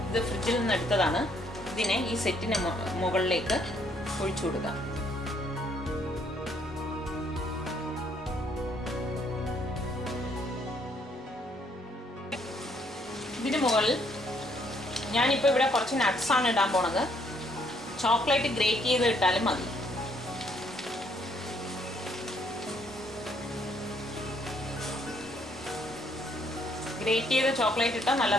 ഫ്രിഡ്ജിൽ നിന്ന് എടുത്തതാണ്. ഇതിനെ ഈ സെറ്റിന് മുകളിലേക്ക് ഒഴിച്ചു കൊടുക്കാം. ഇതിന് മുകളിൽ ഞാനിപ്പോൾ ഇവിടെ കുറച്ച് നട്ട്സാണ് ഇടാൻ പോണത്. ചോക്ലേറ്റ് ഗ്രേറ്റ് ചെയ്ത് ഇട്ടാലും മതി. ഗ്രേറ്റ് ചെയ്ത ചോക്ലേറ്റ് ഇട്ടാൽ നല്ല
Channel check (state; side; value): normal; both; correlation 0.68